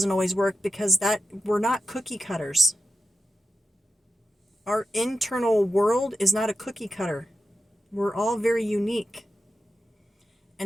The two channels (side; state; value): both; normal; correlation 0.89